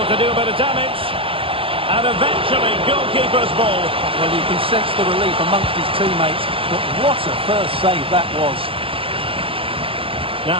to do a bit of damage. And eventually, goalkeeper's ball. Well, you can sense the relief amongst his teammates. But what a first save that was.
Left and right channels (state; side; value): late; left; 0.27 ms